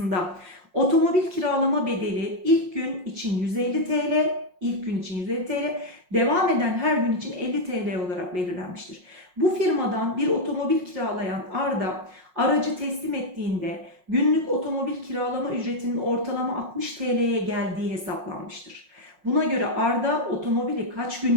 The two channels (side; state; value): left; late; 5.5 ms